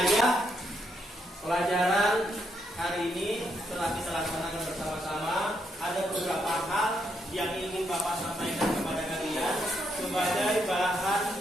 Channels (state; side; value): normal; both; correlation 0.77